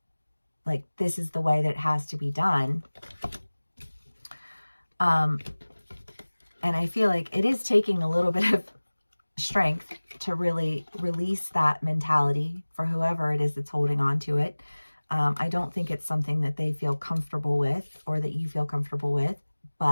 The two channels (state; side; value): inverted; both; correlation -1.00